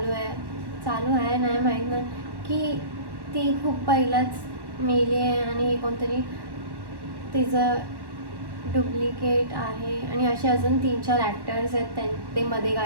आहे नाही माहीत नाही की ती खूप पहिलाच मेली आहे आणि हे कोणतरी तिचं डुप्लिकेट आहे. आणि असे अजून 3-4 ॲक्टर्स आहेत ते मध्ये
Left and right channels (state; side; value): late; left; 1.1 ms